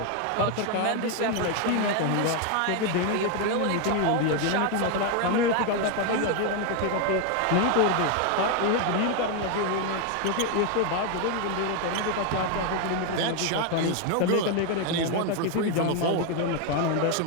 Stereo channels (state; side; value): different; both; correlation 0.01